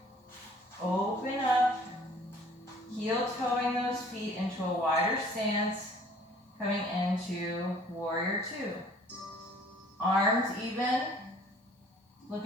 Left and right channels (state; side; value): normal; both; correlation 0.54